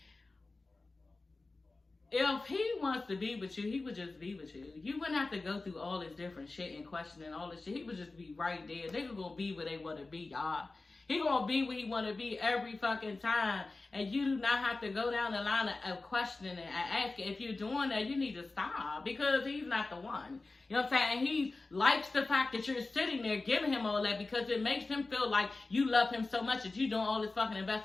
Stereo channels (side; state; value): right; quieter; 3.4 dB